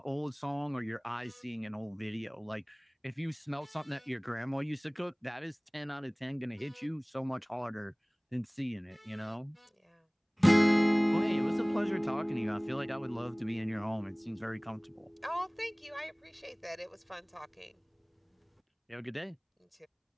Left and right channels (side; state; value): both; identical; correlation 1.00